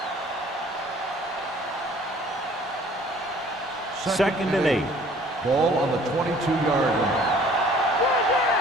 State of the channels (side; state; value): both; normal; correlation 0.54